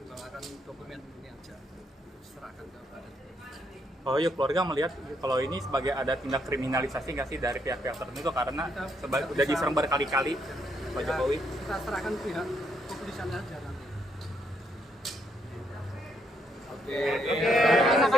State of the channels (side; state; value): both; normal; correlation 0.74